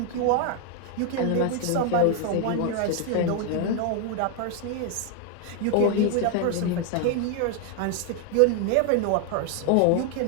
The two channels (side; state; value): both; different; correlation 0.00